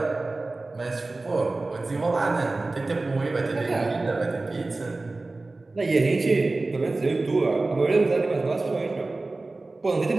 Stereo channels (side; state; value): left; quieter; 3.2 dB